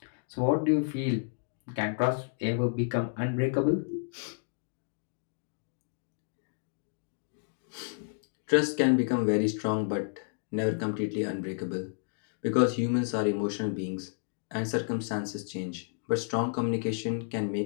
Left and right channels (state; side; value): silent; right; digital silence